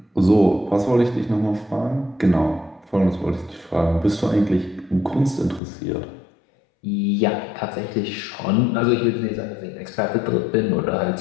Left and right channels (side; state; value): right; drops out; at 5.6 s